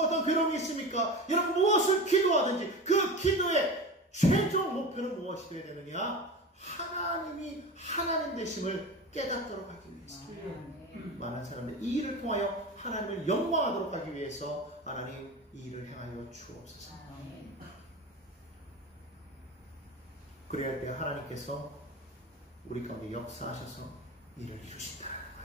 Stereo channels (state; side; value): normal; both; correlation 0.29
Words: 어떤 괴로움이 있습니까? 여러분 무엇을 기도하든지 그 기도의 최종 목표는 무엇이 되어야 되느냐? 하나님이 하나님 되심을 깨닫도록 하기 위해서. 많은 사람들이 이 일을 통하여 하나님을 영광하도록 하기 위해서 하나님 이 일을 행하여 주옵소서. 그래야 할 때 하나님께서 우리 가운데 역사하셔서 일을 이루신다.